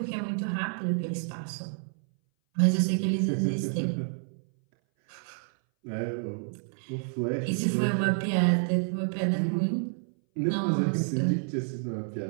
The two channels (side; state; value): left; silent; 59 dB below the other